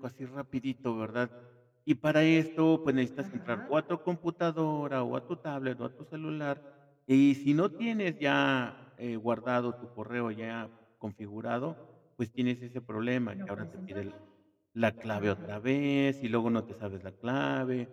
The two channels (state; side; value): identical; both; correlation 1.00